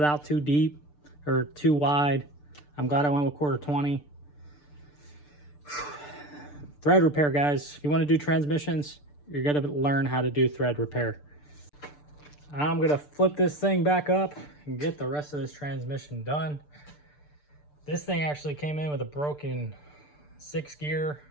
out too deep or too wide. I'm glad I went with 1/4-20. Thread repair, guys. If you want to do transmissions, you're going to learn how to do thread repair. I'm going to flip this thing back up and get the rest of this transmission done. This thing actually came in with a broken 6-gear.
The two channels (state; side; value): late; right; 6.8 ms